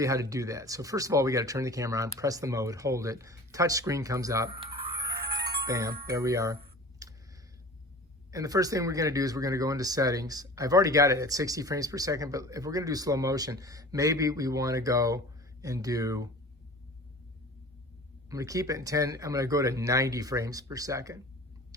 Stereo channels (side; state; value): both; normal; correlation 0.40